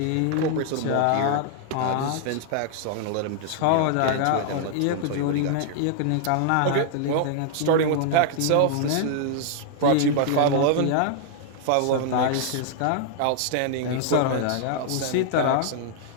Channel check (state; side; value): different; both; correlation 0.00